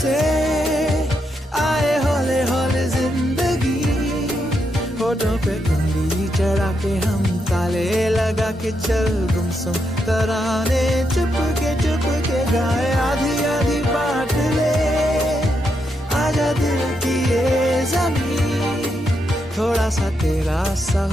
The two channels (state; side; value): normal; both; correlation 0.81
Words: आए हौले हौले जिंदगी, होठों पे उंगली चढ़ा के हम ताले लगा के चल गुमसुम तराने चुप के गाए। आधी आधी बांट ले आजा दिल की ये ज़मीन, थोड़ा सा तेरा सा